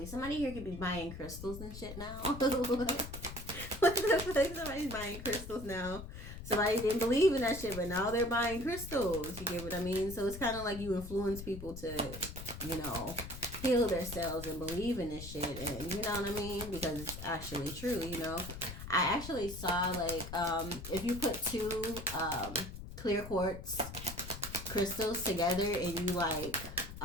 Somebody here could be buying crystals and shit now. What the fuck? Somebody's buying crystals now. Somebody didn't believe in that shit, but now they're buying crystals. You get what I mean? So it's kind of like you influence people to, you know, heal themselves and believe in this shit, and you know what I mean, because it's actually true. You know, I actually saw like if you put two clear quartz crystals together and you like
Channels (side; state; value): left; noise; rumble, 10 dB below the sound